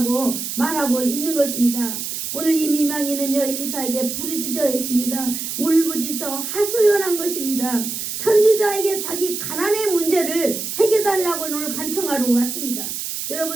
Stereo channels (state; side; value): noise; right; hiss, 5 dB below the sound